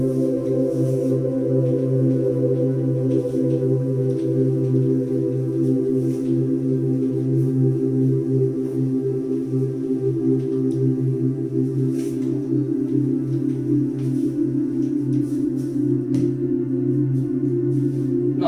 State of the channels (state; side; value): identical; both; correlation 1.00